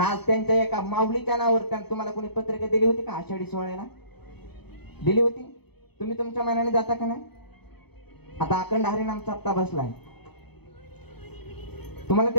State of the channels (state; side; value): late; right; 0.98 ms